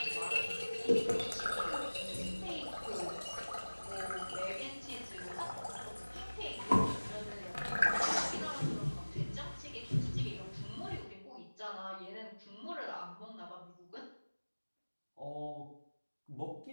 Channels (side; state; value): both; inverted; correlation -1.00